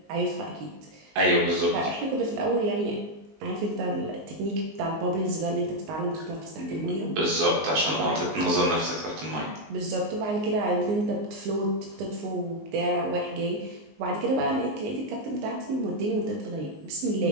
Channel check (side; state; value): left; late; 19 ms